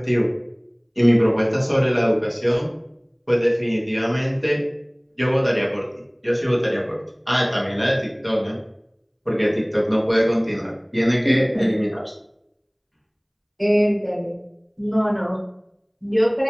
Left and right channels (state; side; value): identical; both; correlation 1.00